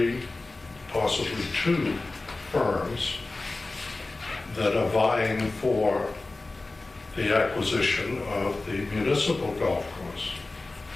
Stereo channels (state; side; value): quieter; right; 3.2 dB